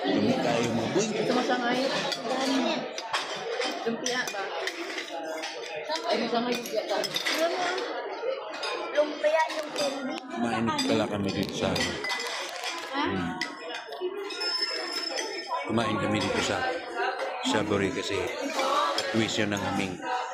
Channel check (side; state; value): both; identical; correlation 1.00